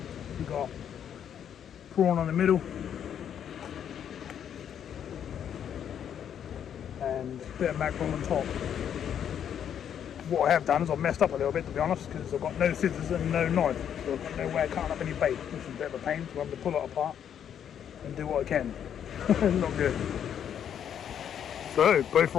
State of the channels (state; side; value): quieter; right; 9.0 dB